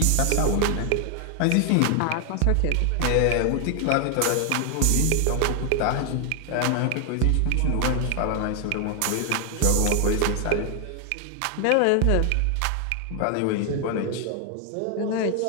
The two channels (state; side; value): different; both; correlation 0.00